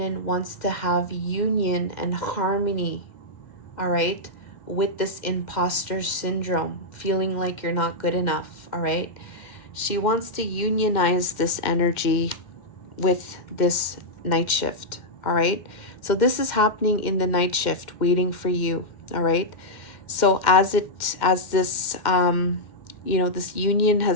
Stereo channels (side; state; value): right; late; 2.1 ms